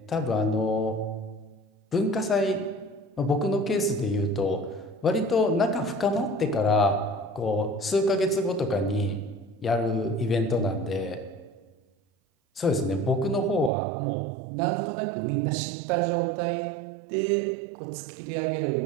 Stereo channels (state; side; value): drops out; left; at 13.7 s